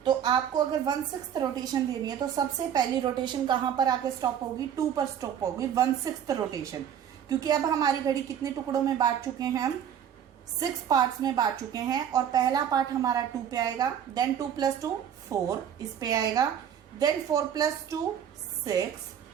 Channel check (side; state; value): left; quieter; 9.2 dB